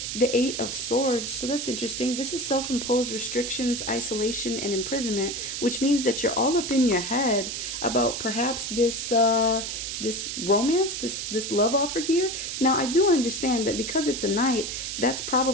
the Eight of Swords. So that's interesting. This is self-imposed restrictions, isolation, and imprisonment, which means that you're all up in your head about perhaps this this romance, this love offer here. Now, I do understand that because it's a knight, that's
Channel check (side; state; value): right; noise; hiss, 4 dB below the sound